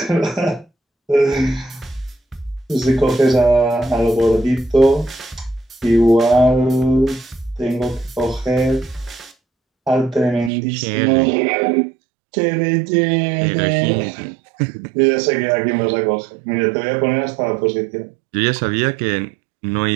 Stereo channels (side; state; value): left; drops out; at 10.5 s